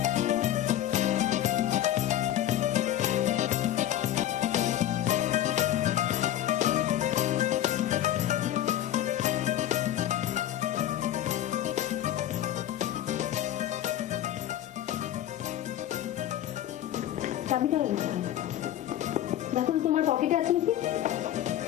চাবিটা দেখো তো তোমার পকেটে আছে নাকি?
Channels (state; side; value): quieter; right; 12.1 dB